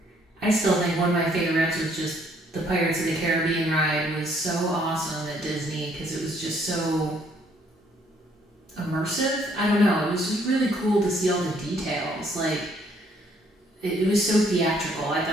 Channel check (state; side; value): normal; both; correlation 0.65